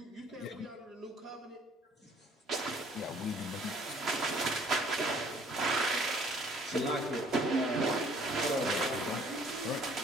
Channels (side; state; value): both; normal; correlation 0.58